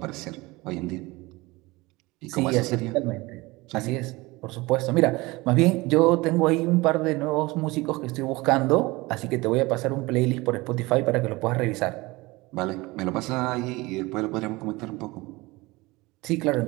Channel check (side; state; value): left; quieter; 22.1 dB